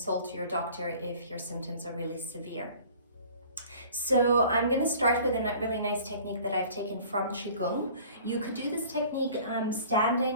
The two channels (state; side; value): inverted; both; correlation -0.48